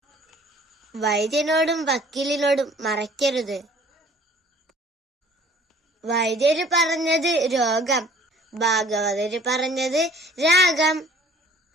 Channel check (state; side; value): normal; both; correlation 0.52